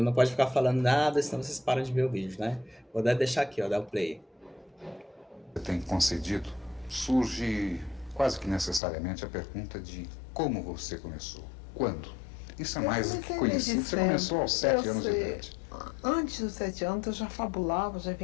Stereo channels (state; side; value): drops out; right; at 8.8 s